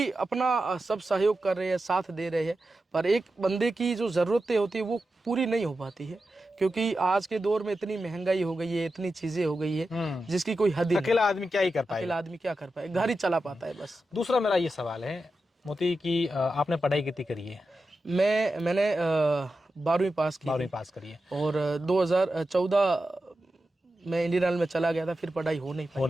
अपना सब सहयोग कर रहे हैं, साथ दे रहे हैं, पर एक बंदे की जो ज़रूरतें होती है वो पूरी नहीं हो पाती है। क्योंकि आज के दौर में इतनी महंगाई हो गई है, इतनी चीज़ें हो गई है जिसकी कोई हद नहीं। अकेला आदमी क्या ही कर पाए, अकेला आदमी क्या कर पाए, घर ही चला पाता है बस। दूसरा मेरा ये सवाल है मोती कि आपने पढ़ाई कितनी करी है? मैंने 12वीं पास की। 12वीं पास करी है। और 2014 में इंडियन आर्मी में चला गया था, फिर पढ़ाई हो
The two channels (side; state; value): both; normal; correlation 0.91